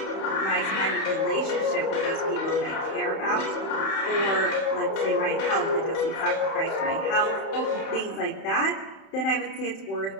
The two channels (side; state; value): right; late; 31 ms